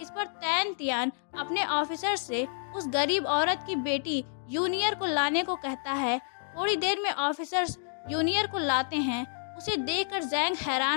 पर तैन तियांग अपने ऑफिसर से उस गरीब औरत की बेटी यूनियर को लाने को कहता है। थोड़ी देर में ऑफिसर्स यूनियर को लाते हैं। उसे देखकर जैंग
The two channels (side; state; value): right; silent; digital silence